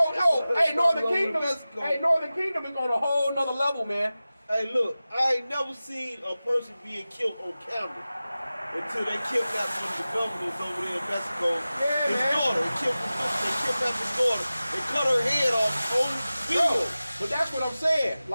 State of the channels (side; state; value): both; inverted; correlation -0.96